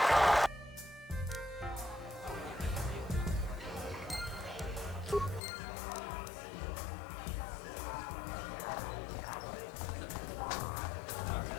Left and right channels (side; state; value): right; drops out; at 5.4 s